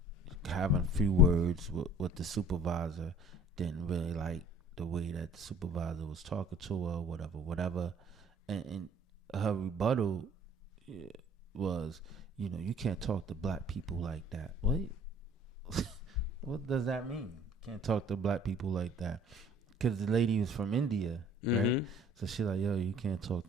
having a few words with the supervisor. Didn't really like the way that the supervisor was talking to her, whatever. And her rebuttal was, you can't talk to black people like that. What? What does that mean? Can't talk to black people like that? Because the lady was from India, right? Mm-hmm. So she's like, yo, you can't talk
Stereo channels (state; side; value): normal; both; correlation 0.51